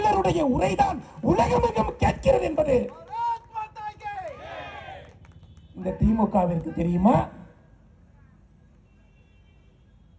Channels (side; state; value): both; identical; correlation 1.00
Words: உரைதான் உலகமெங்கும் கேட்கிறது என்பது இந்த திமுகவிற்கு தெரியுமா?